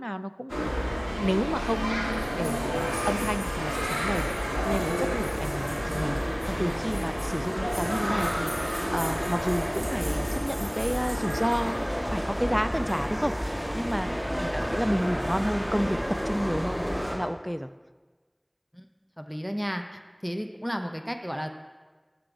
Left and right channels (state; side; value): identical; both; correlation 1.00